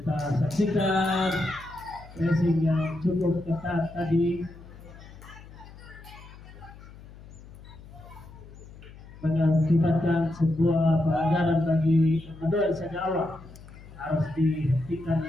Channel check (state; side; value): noise; left; hum, 18 dB below the sound